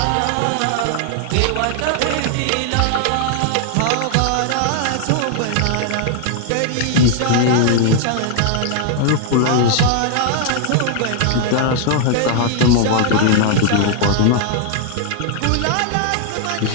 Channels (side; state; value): both; different; correlation 0.00